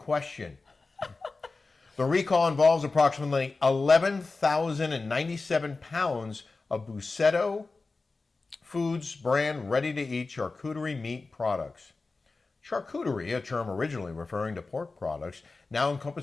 The recall involves approximately 11,097 pounds of Bussetto Foods brand ready-to-eat charcuterie meat products. Charcuterie, a term originally referring to pork products, now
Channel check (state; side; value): quieter; right; 3.8 dB